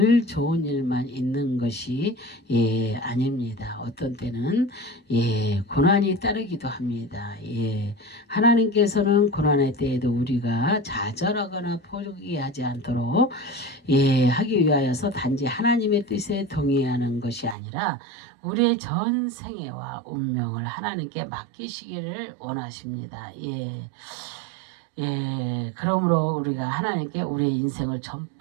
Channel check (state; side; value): drops out; left; at 17.6 s